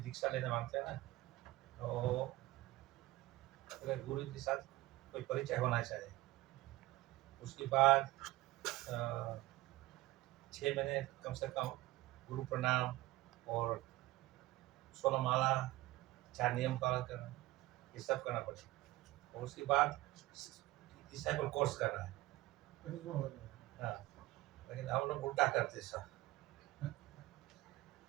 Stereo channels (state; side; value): quieter; left; 18.5 dB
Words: लेने मांगते हैं ना, तो अगर गुरु के साथ कोई परिचय होना चाहिए। उसके बाद 6 महीने कम से कम गुरु प्रणाम और 16 माला, 4 नियम पालन करना, ये सब करना पड़ेगा। और उसके बाद डिसाइपल कोर्स करना है। हाँ, लेकिन हम लोग उल्टा करते सब।